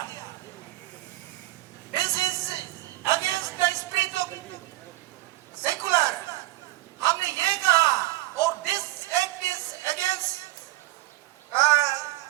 this is against the spirit of secular. हमने ये कहा और this act is against the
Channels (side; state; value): left; quieter; 18.3 dB